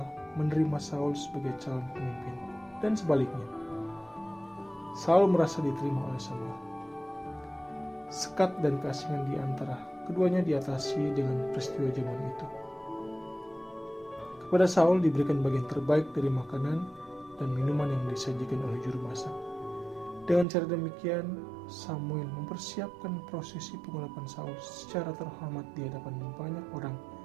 menerima Saul sebagai calon pemimpin dan sebaliknya. Saul merasa diterima oleh Samuel. Sekat dan keasingan di antara keduanya diatasi dengan peristiwa jamuan itu. Kepada Saul diberikan bagian terbaik dari makanan dan minuman yang disajikan oleh juru masak. Dengan cara demikian, Samuel mempersiapkan prosesi pengurapan Saul secara terhormat di hadapan banyak orang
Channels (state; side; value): drops out; left; at 20.5 s